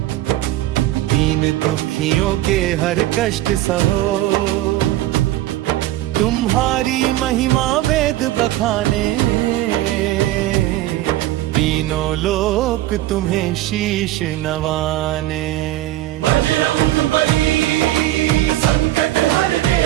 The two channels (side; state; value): left; quieter; 15.3 dB